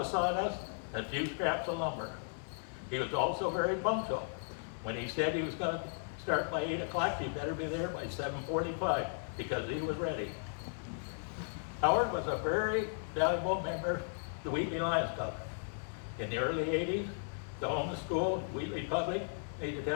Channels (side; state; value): right; silent; 54 dB below the other